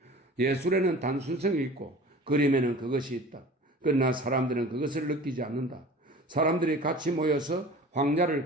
예술에는 단순성이 있고 그림에는 그것이 있다. 그러나 사람들은 그것을 느끼지 않는다. 사람들이 같이 모여서 황야를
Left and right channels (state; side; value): normal; both; correlation 0.41